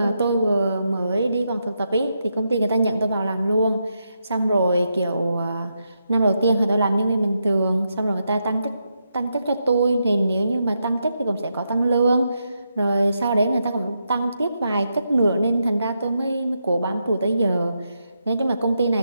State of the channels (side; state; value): both; inverted; correlation -0.83